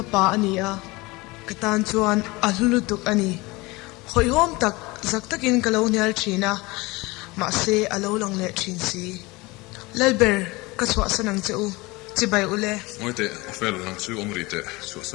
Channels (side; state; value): right; quieter; 23.0 dB